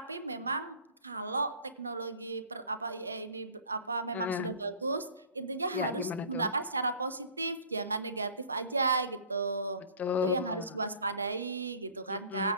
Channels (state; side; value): inverted; both; correlation -0.49